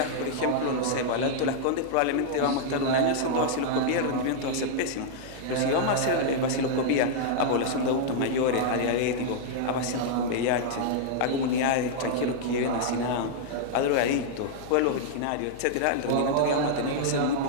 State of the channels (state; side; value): different; both; correlation -0.01